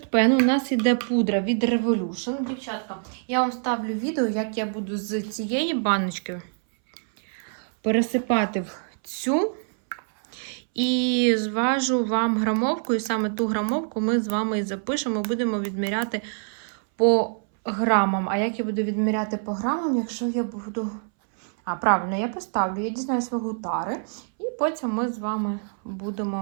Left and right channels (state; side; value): silent; left; 62 dB below the other